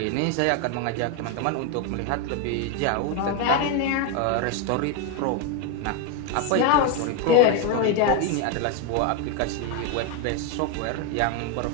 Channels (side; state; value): both; different; correlation 0.02